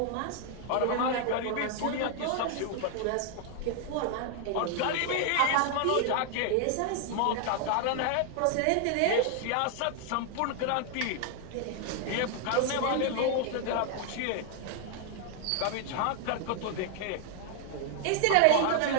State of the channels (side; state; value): both; different; correlation 0.00